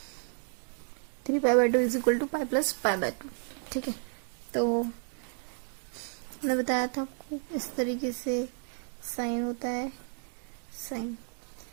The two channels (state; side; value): silent; left; 56 dB below the other